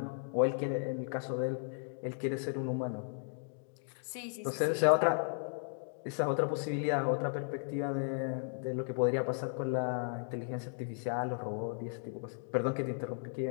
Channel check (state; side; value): silent; right; digital silence